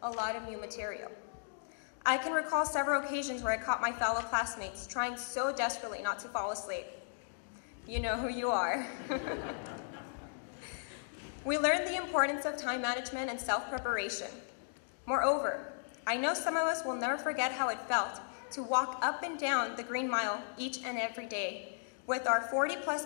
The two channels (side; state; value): right; silent; digital silence